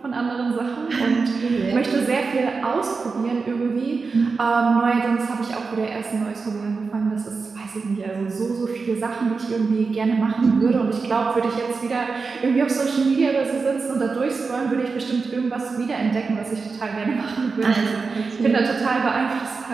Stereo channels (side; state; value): left; quieter; 4.6 dB